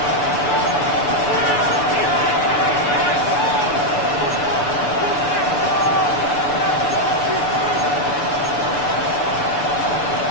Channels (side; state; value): right; late; 6.9 ms